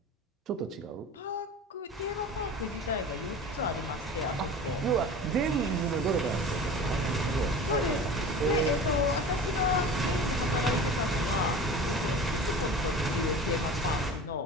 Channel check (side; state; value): both; normal; correlation 0.37